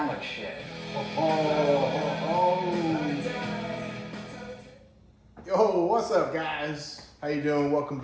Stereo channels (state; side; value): identical; both; correlation 1.00